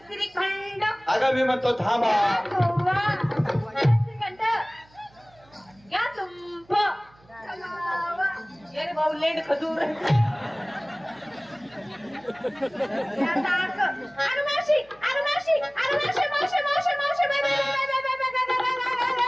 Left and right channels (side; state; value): right; noise; hum, 29 dB below the sound